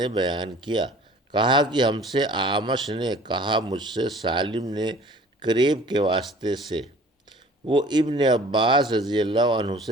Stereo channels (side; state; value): both; normal; correlation 0.49